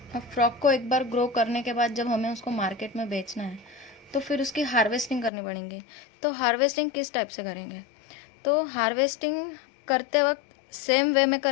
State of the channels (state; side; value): drops out; right; at 5.3 s